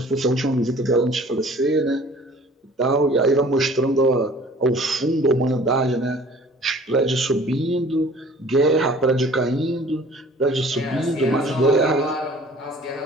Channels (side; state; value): both; normal; correlation 0.50